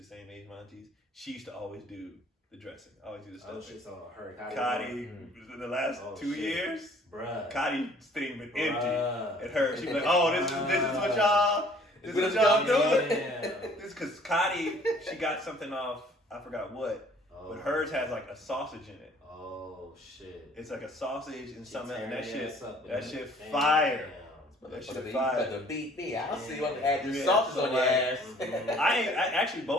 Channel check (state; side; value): normal; both; correlation 0.56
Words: same age as my aunties. She used to always do the dressing, always do the stuffing. Oh shit, so her Kati, the last 2 years, bruh. Kati's thing been empty. And her, she'd be like, oh, this is what y'all doing? This because Kati, she got something off, I forgot what, but hers has like a sausage in it. Oh shit! It's like a sausage and something, and that shit fire. That shit You fire. got to beat me. I'll see what add your Yeah, sauces so on your like- ass. I actually